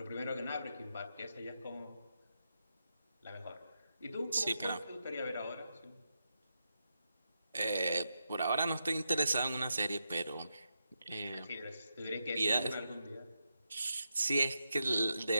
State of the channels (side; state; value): both; inverted; correlation -0.85